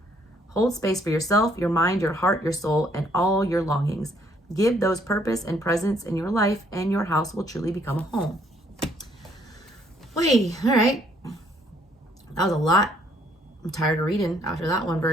Hold space for yourself, your mind, your heart, your soul, and all your longings. Give those purpose and presence in your life, and your house will truly become a home. Wait, all right. That was a lot. I'm tired of reading after that one,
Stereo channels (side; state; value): both; normal; correlation 0.66